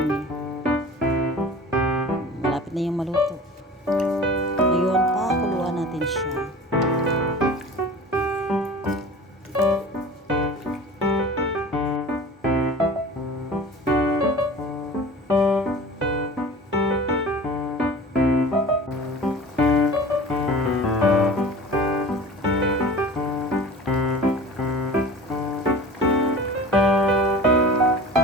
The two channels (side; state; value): both; normal; correlation 0.39